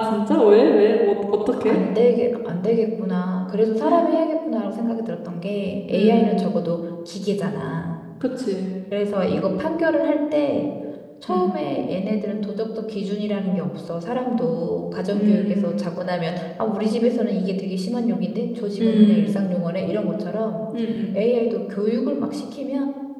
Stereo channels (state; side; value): identical; both; correlation 1.00